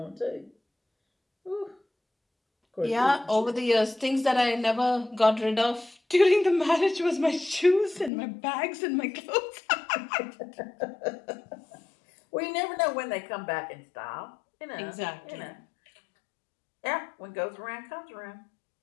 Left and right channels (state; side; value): drops out; right; at 8.1 s